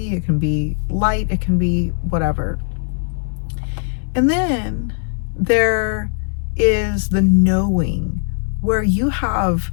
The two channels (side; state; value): right; silent; digital silence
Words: it can be light, it can be whatever. And then there is the knowing, where you have